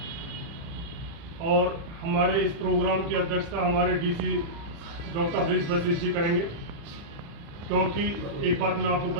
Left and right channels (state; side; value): late; left; 35 ms